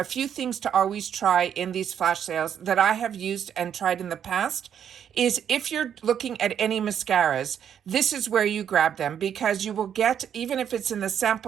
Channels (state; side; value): quieter; left; 8.8 dB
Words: few things to always try in these flash sales that I have used and tried in the past is if you're looking at any mascaras, this is where you grab them because you will get, even if it's in the